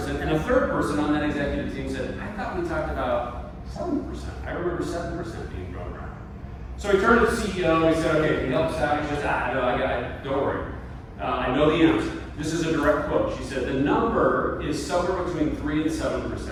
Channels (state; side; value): identical; both; correlation 1.00